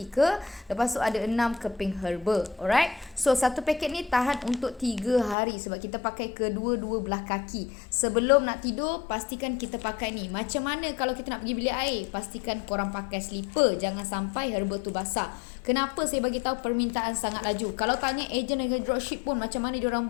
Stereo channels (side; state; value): right; drops out; at 5.4 s